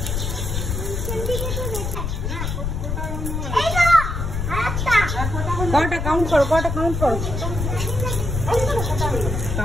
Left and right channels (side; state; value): left; noise; rumble, 3 dB below the sound